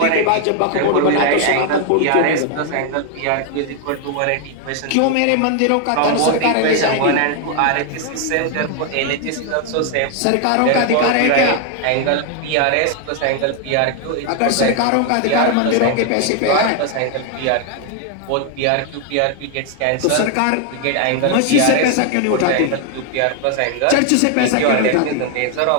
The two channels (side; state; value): both; different; correlation 0.01